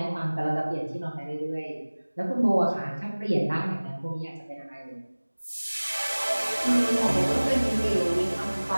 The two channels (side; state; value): both; inverted; correlation -1.00